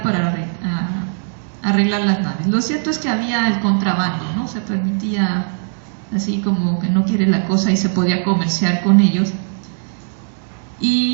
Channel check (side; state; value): left; silent; digital silence